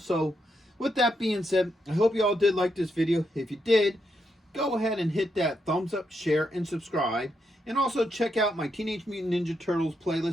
So, with that being said, I hope you all did like this video. If you did, go ahead and hit that thumbs up, share, and subscribe. And also check out my Teenage Mutant Ninja Turtles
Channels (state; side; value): normal; both; correlation 0.81